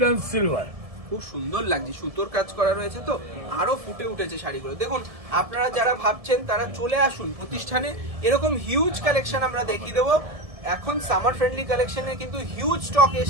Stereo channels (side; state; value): left; late; 1.7 ms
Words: এন্ড সিলভার, খুব সুন্দর লাগছে। সুতোর কাজ করা রয়েছে, তো আরো ফুটে উঠেছে শাড়িগুলো। দেখুন আপনারা যারা ভাবছেন তারা চলে আসুন প্রতিষ্ঠানে, এরকম হিউজ কালেকশন আমরা দেখিয়ে দেবো। এখন সামার ফ্রেন্ডলি কালেকশনে কিন্তু হিউজ স্টক